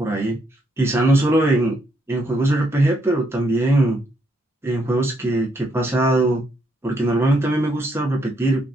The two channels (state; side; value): normal; both; correlation 0.75